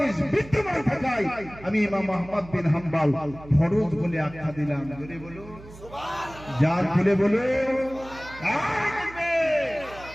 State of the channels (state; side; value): noise; right; hum, 18 dB below the sound